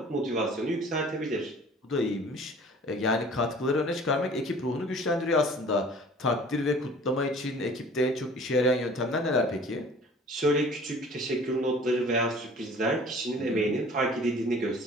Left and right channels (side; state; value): both; normal; correlation 0.48